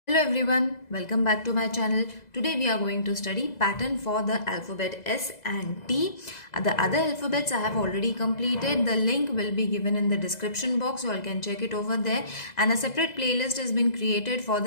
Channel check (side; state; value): right; late; 2.0 ms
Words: Hello everyone, welcome back to my channel. Today we are going to study pattern for the alphabet S and T. The other alphabets I have already completed. The link will be given in the description box. You all can check it over there. And a separate playlist has been created for